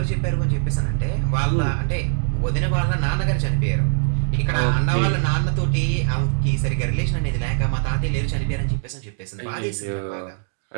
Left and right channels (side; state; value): left; silent; digital silence